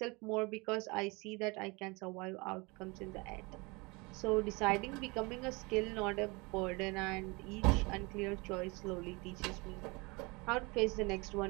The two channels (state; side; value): quieter; left; 26.5 dB